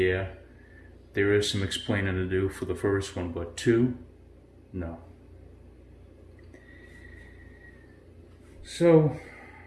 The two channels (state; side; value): identical; both; correlation 1.00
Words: there is some explaining to do for the first one, but two, no. So